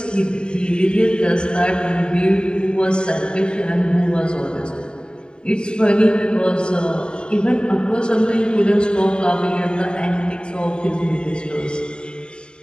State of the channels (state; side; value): late; right; 0.050 ms